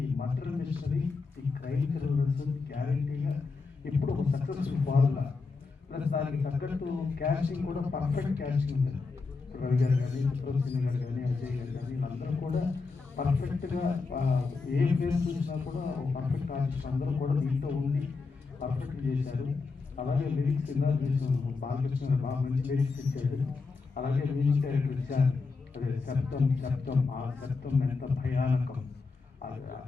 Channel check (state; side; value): quieter; right; 4.3 dB